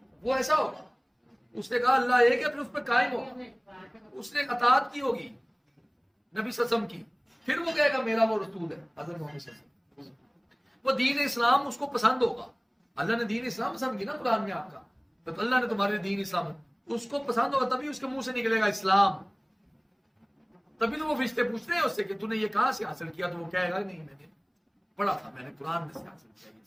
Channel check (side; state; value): both; identical; correlation 1.00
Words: وہ ایسا ہوگا، اس نے کہا اللہ ایک ہے پھر اس پہ قائم ہوگا، اس نے اطاعت کی ہوگی نبی صلی اللہ علیہ وسلم کی، پھر وہ کہے گا میرا وہ رسول ہے حضرت محمد صلی اللہ علیہ وسلم، وہ دین اسلام اس کو پسند ہوگا، اللہ نے دین اسلام پسند کی نا قرآن میں آپ کا، تو اللہ نے تمہارے دین اسلام اس کو پسند ہوگا، تبھی اس کے منہ سے نکلے گا اسلام، تبھی تو وہ فرشتے پوچھتے ہیں اس سے کہ تو نے یہ کہاں سے حاصل کیا، تو وہ کہے گا نہیں میں نے پڑھا تھا، میں نے قرآن میں سے حاصل